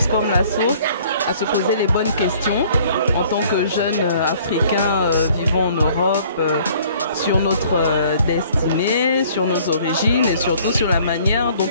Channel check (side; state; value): both; inverted; correlation -0.56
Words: comme La Source, à se poser les bonnes questions en tant que jeunes Africains vivant en Europe, sur notre destinée, sur nos origines et surtout sur la manière dont